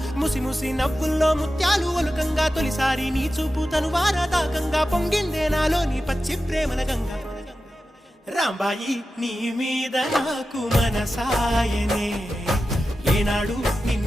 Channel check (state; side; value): normal; both; correlation 0.93